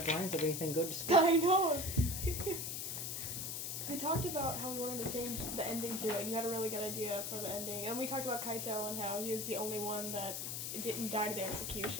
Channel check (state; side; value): noise; left; hiss, 4 dB below the sound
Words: of anything good to speak. I know! We talked about how we wanted to change the ending to it, and you had a really good idea for the ending. And we talked about Kaito and how he was the only one that didn't die to the